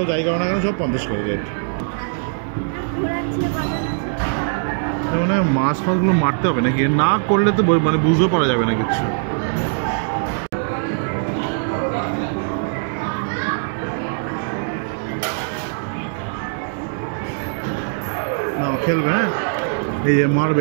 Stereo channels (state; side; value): silent; left; digital silence